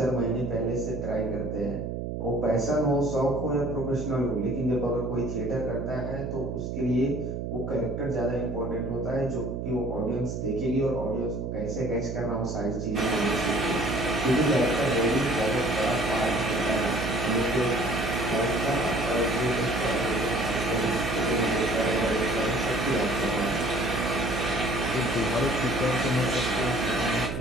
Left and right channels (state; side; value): noise; right; hum, 4 dB below the sound